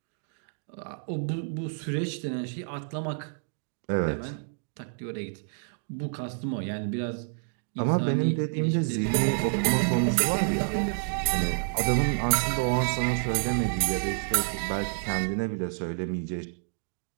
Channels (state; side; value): silent; left; digital silence